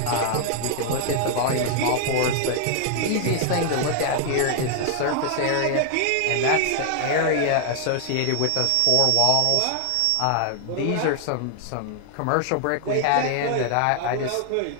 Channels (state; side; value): different; both; correlation 0.00